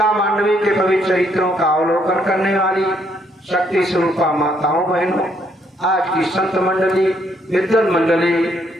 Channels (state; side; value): normal; both; correlation 0.71